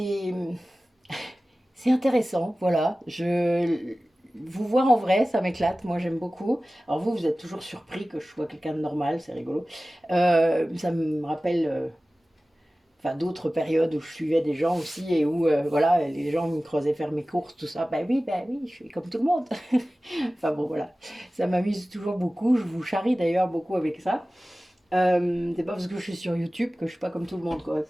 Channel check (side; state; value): both; normal; correlation 0.97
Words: intéressant, voilà. Vous voir en vrai, ça m'éclate, moi j'aime beaucoup. Alors vous êtes toujours surpris que je sois quelqu'un de normal, c'est rigolo. Ça me rappelle enfin d'autres périodes où je suivais des gens aussi et où voilà, les gens me creusaient faire mes courses, tout ça. Ben oui, je suis comme tout le monde. Enfin bon, voilà, ça m'amuse toujours beaucoup. Je vous charrie d'ailleurs beaucoup avec ça. C'est pas parce que je suis sur YouTube que je suis pas comme tout le monde, quoi.